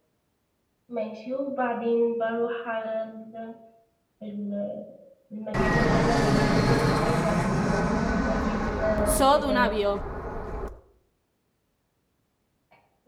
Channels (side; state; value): both; identical; correlation 1.00